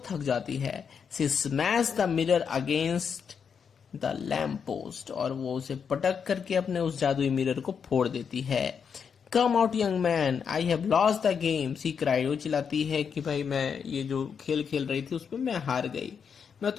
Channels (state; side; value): quieter; right; 6.7 dB